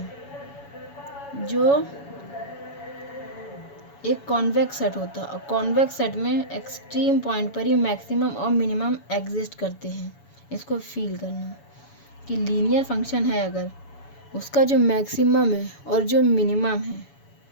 जो एक कॉन्वेक्स सेट होता है, और कॉन्वेक्स सेट में एक्सट्रीम पॉइंट पर ही मैक्सिमम और मिनिमम एग्जिस्ट करते हैं। इसको फील करना कि लीनियर फंक्शन है, अगर उसका जो मैक्सिमम है और जो मिनिमम है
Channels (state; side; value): late; right; 7.1 ms